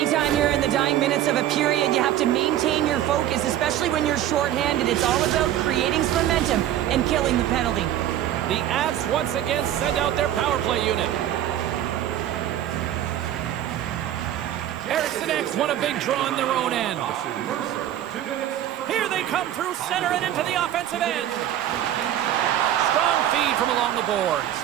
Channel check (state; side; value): quieter; left; 12.0 dB